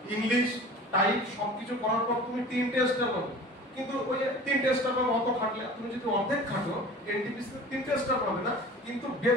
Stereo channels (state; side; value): normal; both; correlation 0.41